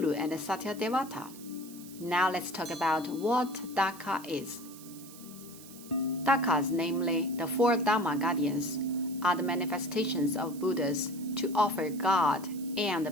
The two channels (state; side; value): noise; right; hiss, 18 dB below the sound